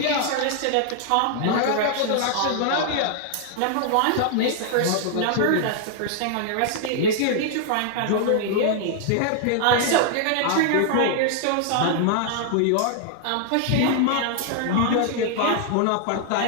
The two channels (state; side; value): different; both; correlation 0.00